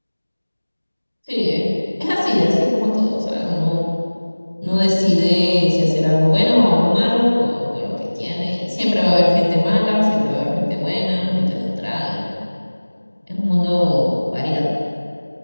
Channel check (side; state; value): both; inverted; correlation -1.00